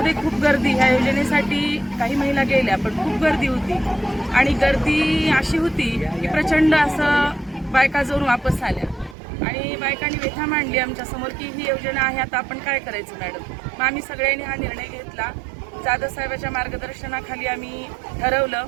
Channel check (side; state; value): left; drops out; at 9.2 s